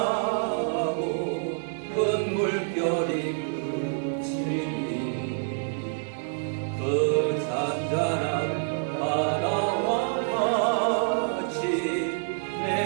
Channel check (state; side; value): silent; left; 60 dB below the other